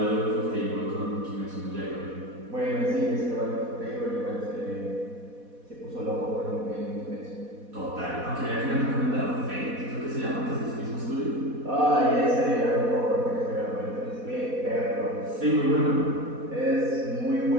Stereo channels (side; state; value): left; late; 4.1 ms